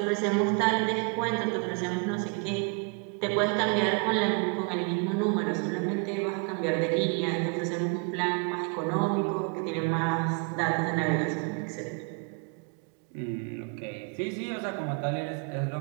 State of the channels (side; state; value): left; quieter; 34.7 dB